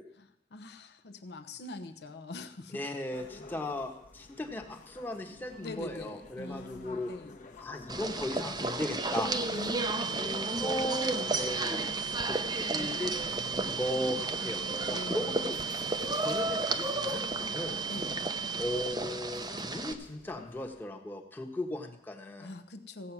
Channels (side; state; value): both; normal; correlation 0.46